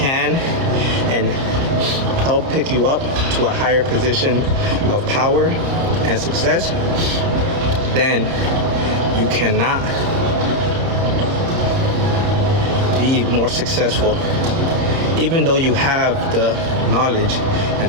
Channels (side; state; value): left; late; 30 ms